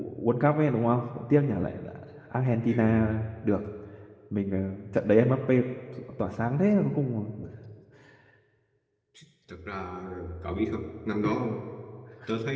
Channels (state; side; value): identical; both; correlation 1.00